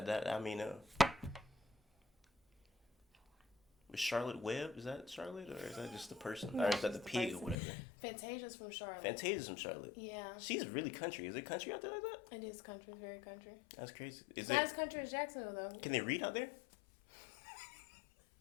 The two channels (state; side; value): drops out; right; at 7.6 s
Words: Was Charlotte Webb? Is that Charlotte, or is that just the person? No, or is that the the pig person. or whatever? Fantasia's from Charlotte. Fantasia's from Charlotte. Yeah. She's really country. Is it country out there like that? It is country. It's very country. That's crazy. It's not as country as Jacksonville, though. Can they read out there?